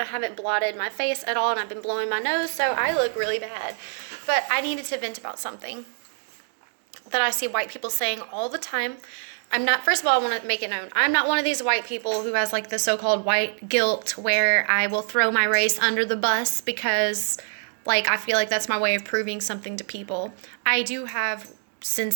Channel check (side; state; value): left; silent; digital silence